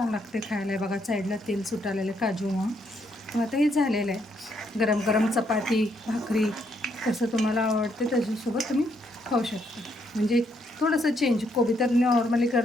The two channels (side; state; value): both; normal; correlation 0.74